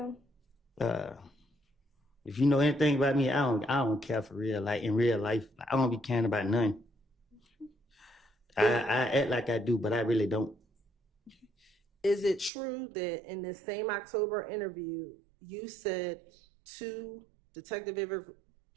If you know anything about me, I don't care for real. Like in real life, I don't be caring about nothing. I act like I do, but I really don't. Is it true that in this same October interview, you said to Detective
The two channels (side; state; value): left; drops out; at 12.5 s